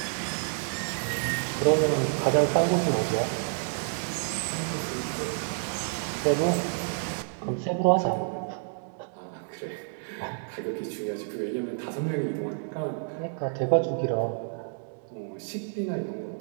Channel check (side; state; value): left; silent; 59 dB below the other